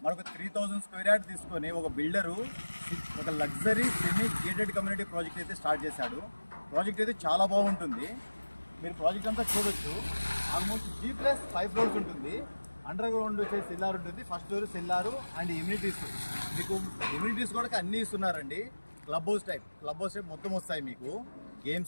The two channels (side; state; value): both; inverted; correlation -1.00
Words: మనకు 3000 స్క్వేర్ యార్డ్ తీసుకొని ఒక బిల్డరు ఒక luxury semi gated community project అయితే స్టార్ట్ చేశాడు. ప్రాజెక్ట్ అయితే చాలా బాగుంటుంది. మీరు ప్రాజెక్ట్ అంతా చూడొచ్చు. ఆల్మోస్ట్ G+5 ఫ్లోర్స్ ఉంటుంది. అండర్ గ్రౌండ్ వచ్చేసి సెల్లార్ ఉంటుంది. First floor cellar and immunities. మీకు ఇమ్యూనిటీస్ కూడా అన్నీ ఇస్తున్నారండి. క్లబ్ హౌస్ టైప్ మొత్తం వస్తాయి మీకు.